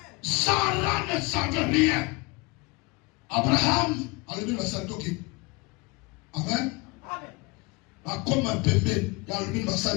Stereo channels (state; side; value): quieter; right; 26.2 dB